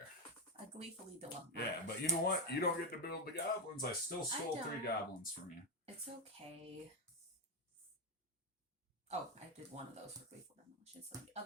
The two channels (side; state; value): both; normal; correlation 0.07